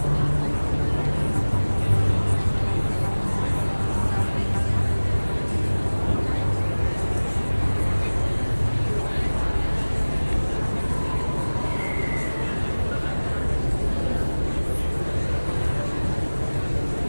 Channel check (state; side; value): inverted; both; correlation -1.00